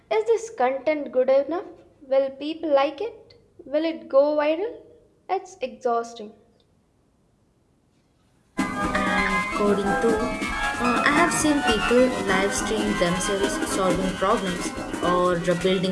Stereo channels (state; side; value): identical; both; correlation 1.00